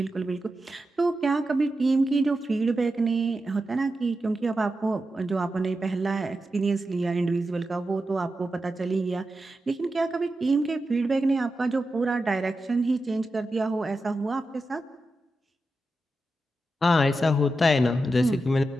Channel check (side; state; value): both; normal; correlation 0.90